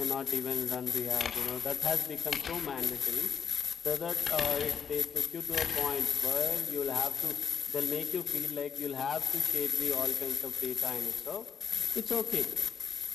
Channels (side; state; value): right; quieter; 7.1 dB